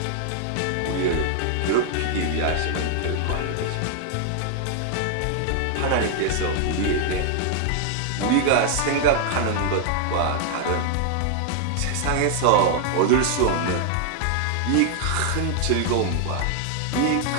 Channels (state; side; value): different; both; correlation 0.00